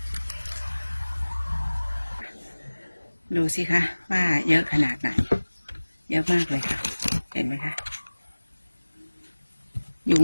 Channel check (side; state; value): both; inverted; correlation -1.00